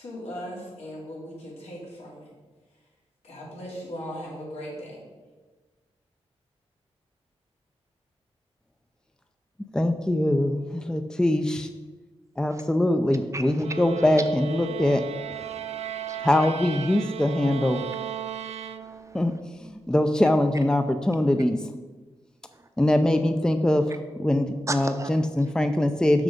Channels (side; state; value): both; normal; correlation 0.91